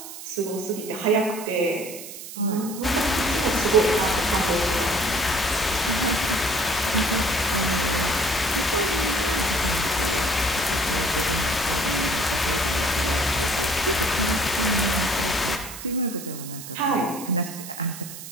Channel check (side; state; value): right; noise; hiss, 12 dB below the sound